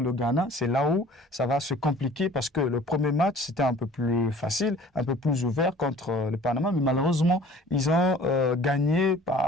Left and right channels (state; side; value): normal; both; correlation 0.49